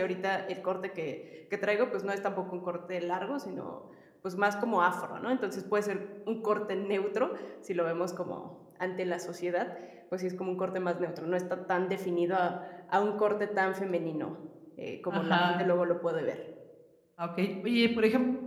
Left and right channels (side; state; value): both; identical; correlation 1.00